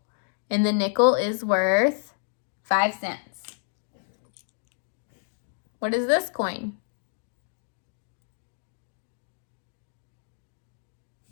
and the nickel is worth 5 cents. What is this coin?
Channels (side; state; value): right; silent; digital silence